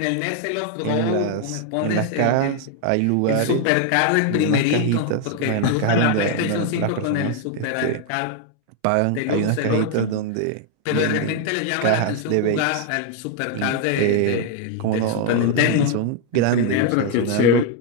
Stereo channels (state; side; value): different; both; correlation 0.00